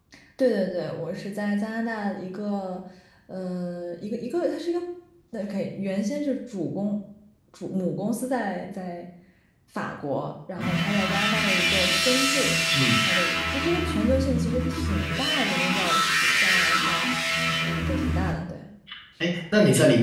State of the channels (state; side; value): identical; both; correlation 1.00